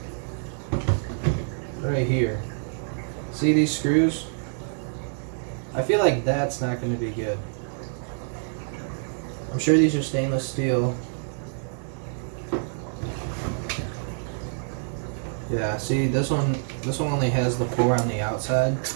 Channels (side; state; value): left; silent; digital silence